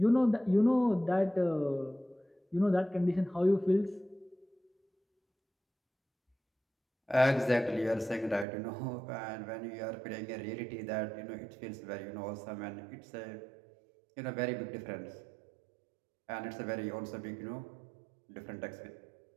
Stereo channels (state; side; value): drops out; left; at 8.5 s